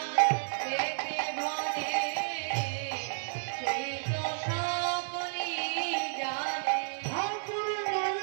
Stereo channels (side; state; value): left; silent; digital silence